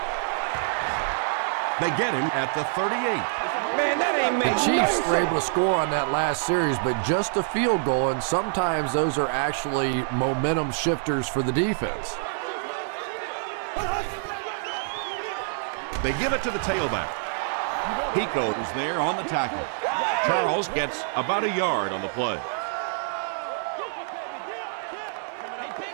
They get him at the 38. Man, that ain't The Chiefs were able to score on that last series, but just a field goal, and sometimes those are actually momentum shifters for the defense. They give it to the tailback. Pico is there on the tackle. Charles gets about a yard on the play.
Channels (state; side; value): silent; left; 61 dB below the other